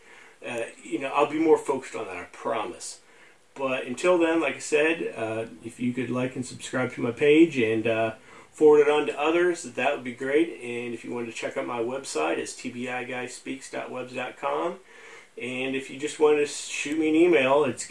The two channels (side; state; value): both; identical; correlation 1.00